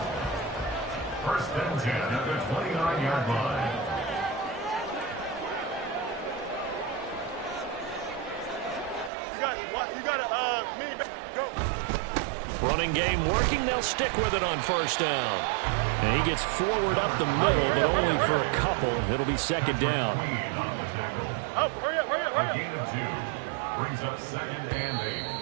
First and 10 at the 29-yard line. You got a mini back. Go. Running game working. They'll stick with it on first down. And he gets forward up the middle, but only for a couple. It'll be second down. Oh, hurry up. A gain of 2 brings up second and 8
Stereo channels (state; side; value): drops out; left; at 9.1 s